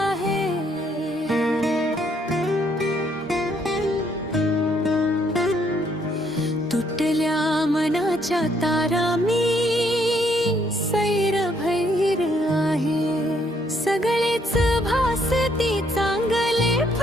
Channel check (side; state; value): both; normal; correlation 0.70